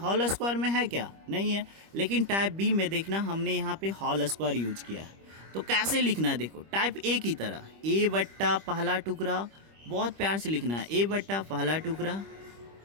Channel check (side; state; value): left; late; 25 ms